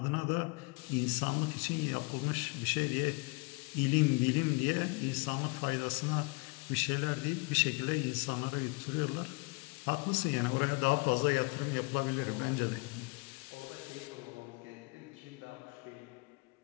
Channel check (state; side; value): quieter; right; 28.3 dB